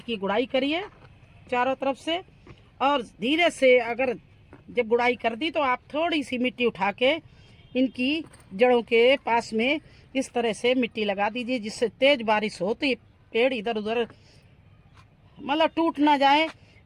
की गुड़ाई करिए चारों तरफ से। और धीरे से अगर जब गुड़ाई कर दी तो आप थोड़ी सी मिट्टी उठा के इनकी जड़ों के पास में इस तरह से मिट्टी लगा दीजिए, जिससे तेज बारिश हो तो ये पेड़ इधर उधर मतलब टूट ना जाए,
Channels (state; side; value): identical; both; correlation 1.00